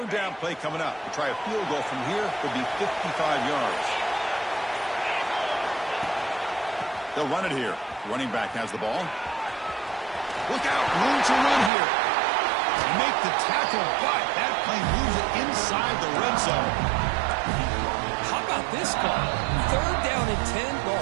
down play coming up. To try a field goal from here would be 55 yards. They'll run it here. Running back has the ball. Look out. Room to run here. Make the tackle, but that play moves it inside the red zone. How about this call? Third down and 10. The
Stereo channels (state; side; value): drops out; left; at 11.7 s